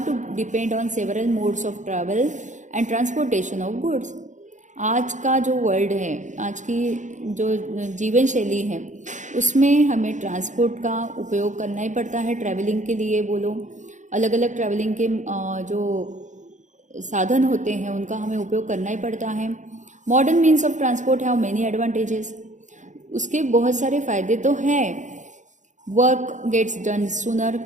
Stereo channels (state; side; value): late; left; 0.36 ms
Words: to depend on several modes of travel and transportation of goods. आज का जो वर्ल्ड है, आज की जो जीवन शैली है, उसमें हमें ट्रांसपोर्ट का उपयोग करना ही पड़ता है। ट्रैवलिंग के लिए बोलो, अलग अलग ट्रैवलिंग के जो साधन होते हैं उनका हमें उपयोग करना ही पड़ता है। Modern means of transport have many advantages. उसके बहुत सारे फ़ायदे तो हैं। Work gets done sooner.